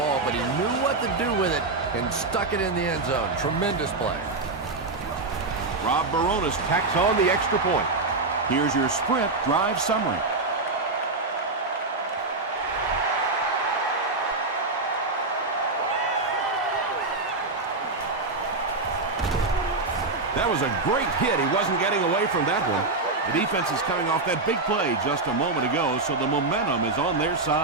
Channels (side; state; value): left; quieter; 3.5 dB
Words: but he knew what to do with it and stuck it in the end zone. Tremendous play. Rob Baronis tacks on the extra point. Here's your sprint drive summary. That was a great hit. He wasn't getting away from that one. The defense is coming off that big play just a moment ago, so the momentum is on their